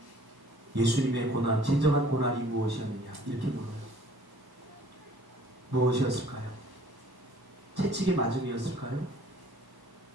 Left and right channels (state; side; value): late; left; 1.1 ms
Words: 예수님의 고난, 진정한 고난이 무엇이었느냐 이렇게 물어요. 무엇이었을까요? 채찍의 맞음이었을까요?